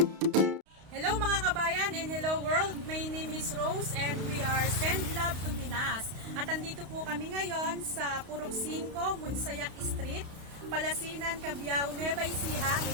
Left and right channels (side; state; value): left; late; 32 ms